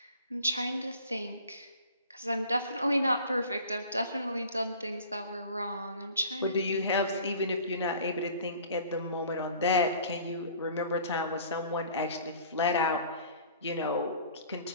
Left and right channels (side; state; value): both; inverted; correlation -0.47